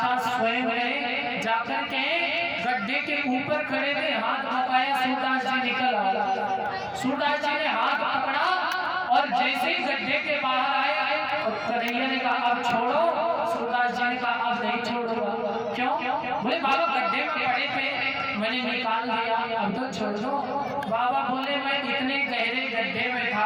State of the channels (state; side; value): identical; both; correlation 1.00